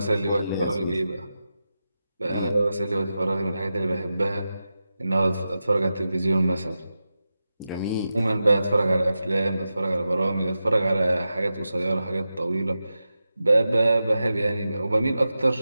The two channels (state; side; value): inverted; both; correlation -0.91